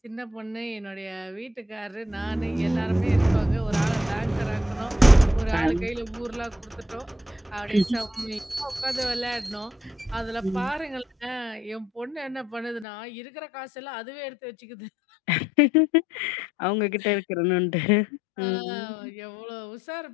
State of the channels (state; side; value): drops out; right; at 12.9 s